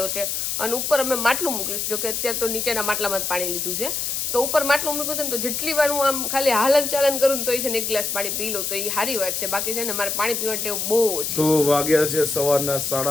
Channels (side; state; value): left; noise; hiss, 1 dB below the sound